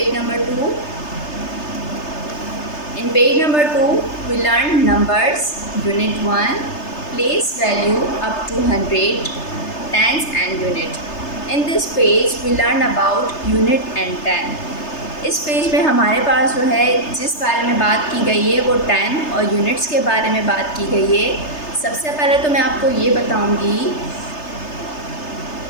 number 2. In page number 2 we learn numbers unit 1. Place value up to 100, tens and unit. In this page we learn about unit and ten. इस page में हमारे पास जो है जिस बारे में बात की गई है वो टेन और यूनिट्स के बारे में बात की गई है। सबसे पहले तो मैं आपको ये बताऊंगी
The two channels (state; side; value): late; right; 3.3 ms